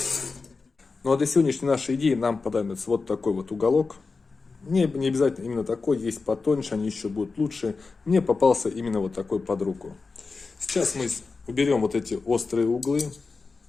Ну а для сегодняшней нашей идеи нам понадобится вот такой вот уголок. Не обязательно именно такой, есть потоньше, они еще будут лучше. Мне попался именно вот такой под руку. Сейчас мы уберем вот эти острые углы.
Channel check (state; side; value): quieter; right; 4.3 dB